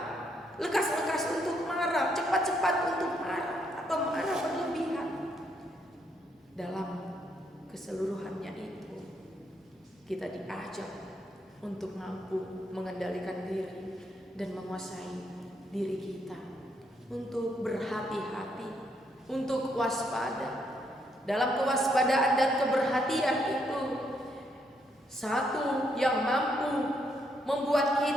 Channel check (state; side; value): normal; both; correlation 0.75